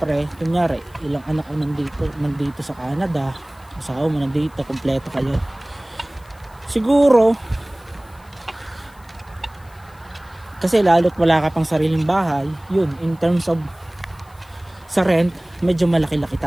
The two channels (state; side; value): noise; left; hiss, 29 dB below the sound